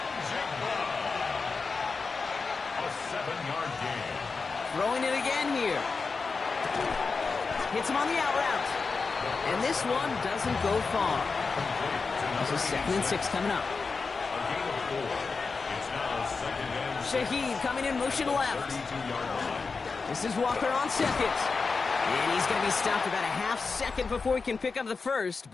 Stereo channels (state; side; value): quieter; right; 4.5 dB